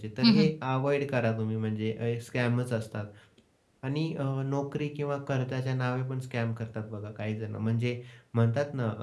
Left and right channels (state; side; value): identical; both; correlation 1.00